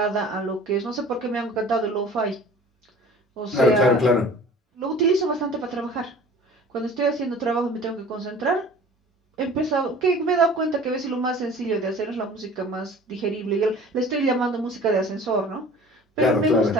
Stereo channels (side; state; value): both; normal; correlation 0.45